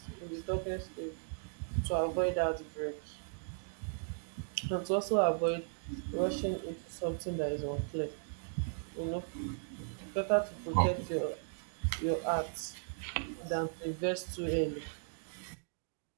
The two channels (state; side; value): silent; left; digital silence